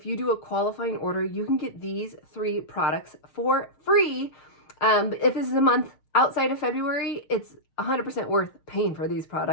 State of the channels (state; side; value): late; right; 6.5 ms